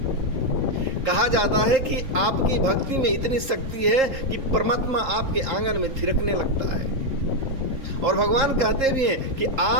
कहा जाता है कि आपकी भक्ति में इतनी शक्ति है कि परमात्मा आपके आंगन में थिरकने लगता है। और भगवान कहते भी हैं कि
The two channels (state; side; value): late; left; 3.7 ms